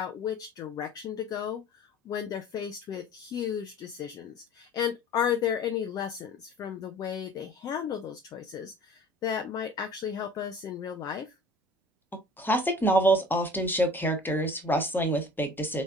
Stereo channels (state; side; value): normal; both; correlation 0.46